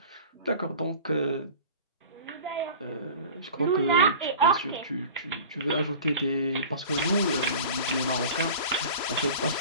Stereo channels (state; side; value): inverted; both; correlation -0.38